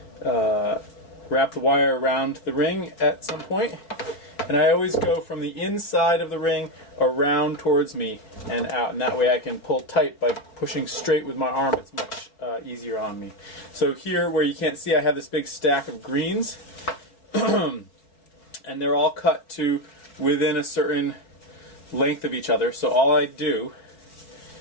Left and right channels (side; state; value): right; late; 5.0 ms